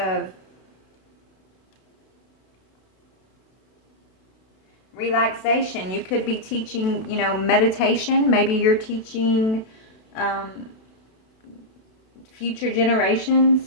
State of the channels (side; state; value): right; late; 32 ms